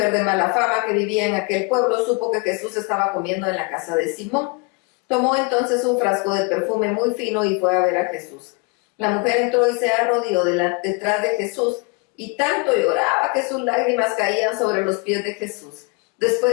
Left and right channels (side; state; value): right; quieter; 30.3 dB